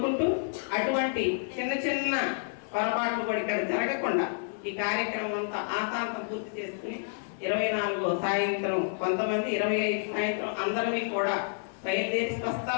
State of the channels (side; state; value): right; silent; 58 dB below the other